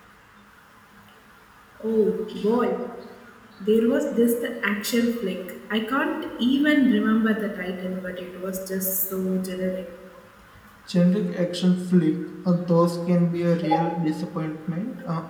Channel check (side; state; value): both; identical; correlation 1.00